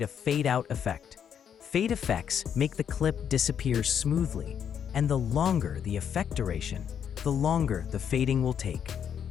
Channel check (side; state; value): right; quieter; 8.3 dB